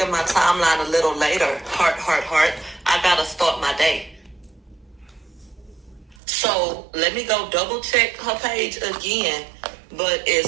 my timeline a little later. Heart, heart, heart. I gotta start my day. So let me go double check her page again. But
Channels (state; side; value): drops out; left; at 6.2 s